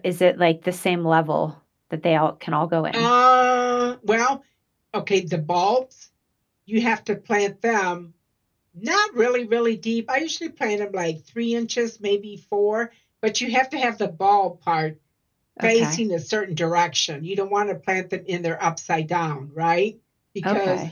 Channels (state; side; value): identical; both; correlation 1.00